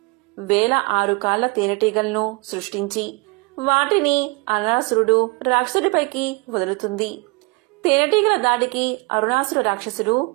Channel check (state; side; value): quieter; left; 26.3 dB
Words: 1006 కాళ్ల తేనెటీగలను సృష్టించి వాటిని అరుణాసురుడు రాక్షసుడిపైకి వదులుతుంది. తేనెటీగల దాడికి అరుణాసుర రాక్షసుడు